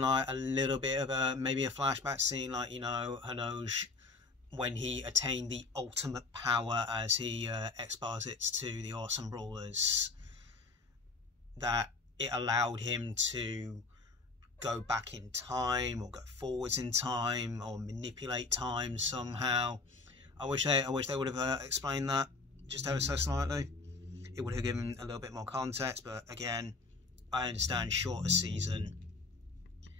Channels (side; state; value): right; quieter; 3.9 dB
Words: like a little bit of maybe a flashback scene, like, you know, Hinoge when he attained the ultimate power, as he exposits to the Awesome Brawlers, that it allowed him to go back in time or go forwards in time or manipulate time somehow. I wish they would have explained that just ever so slightly. It would have given a little bit more context, but again, I understand shorter season.